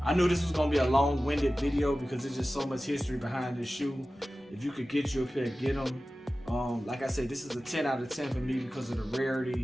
knew this was gonna be a long-winded video because there's just so much history behind this shoe. If you could get you a pair, get them. Like I said, this is a 10 out of 10 for me because of the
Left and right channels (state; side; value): normal; both; correlation 0.96